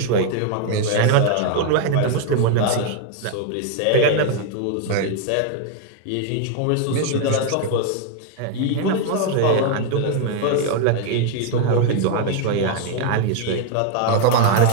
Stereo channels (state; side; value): different; both; correlation 0.00